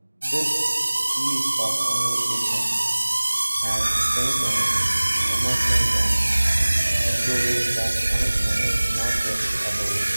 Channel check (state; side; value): inverted; both; correlation -1.00